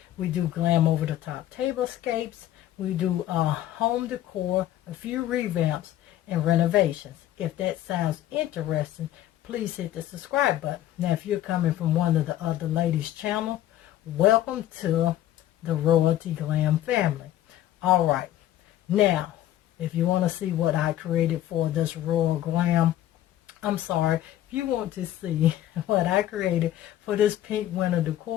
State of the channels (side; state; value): right; quieter; 13.0 dB